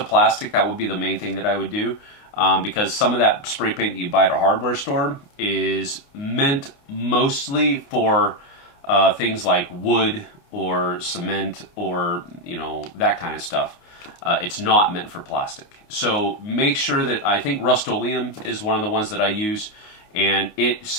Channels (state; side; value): late; right; 28 ms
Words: That would be the main thing that I would do, because some of that spray paint that you buy at a hardware store is meant mostly for things like wood or cement or, you know, that kind of stuff. It's not meant for plastic. So make sure that, I think Rust-Oleum is one of the ones that I use, and it